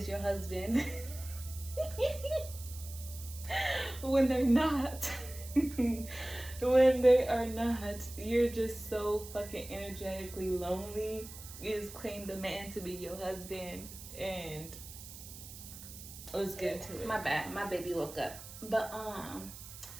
your husband when they're not. When they are not, you're just so fucking energetically lonely. You just claim the man to be your husband, and let's get into it. My bad, my baby woke up. But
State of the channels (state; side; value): noise; right; hiss, 14 dB below the sound